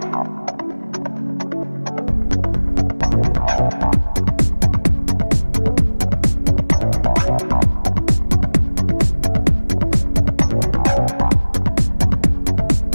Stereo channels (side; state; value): both; inverted; correlation -1.00